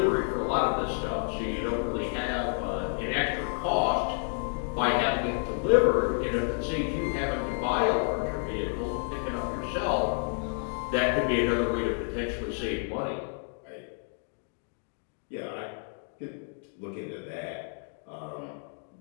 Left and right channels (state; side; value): silent; right; 56 dB below the other